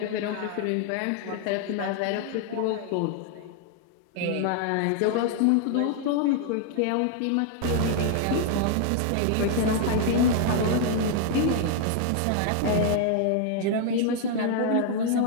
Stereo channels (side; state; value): both; different; correlation 0.00